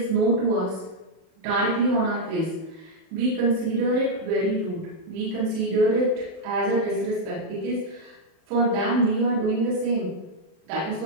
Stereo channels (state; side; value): late; left; 31 ms